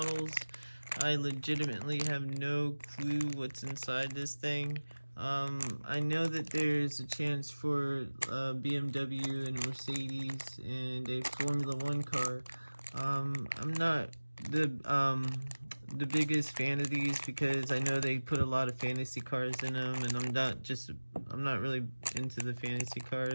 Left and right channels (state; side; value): inverted; both; correlation -1.00